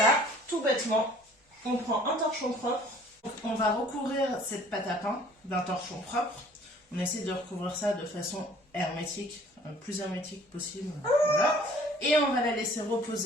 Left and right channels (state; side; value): normal; both; correlation 0.53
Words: ça, tout bêtement, on prend un torchon propre. On va recouvrir cette pâte à pain d'un torchon propre. On essaie de recouvrir ça de façon hermétique, le plus hermétique possible. Voilà. Et on va la laisser